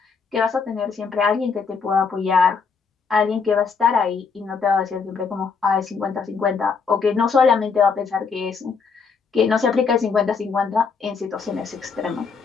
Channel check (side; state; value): right; quieter; 5.4 dB